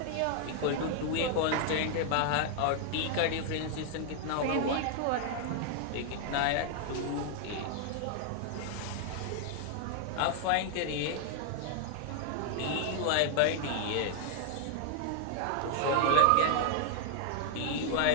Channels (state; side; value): different; both; correlation 0.00